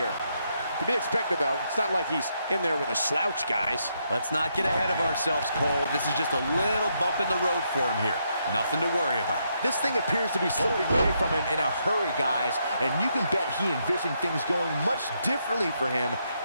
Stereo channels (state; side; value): inverted; both; correlation -0.78